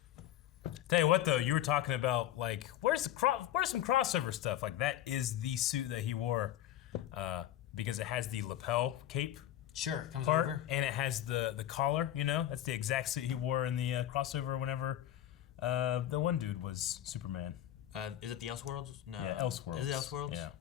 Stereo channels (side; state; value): right; quieter; 12.4 dB